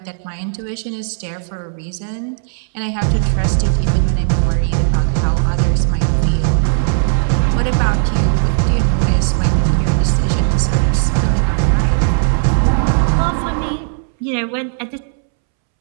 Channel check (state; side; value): silent; left; 69 dB below the other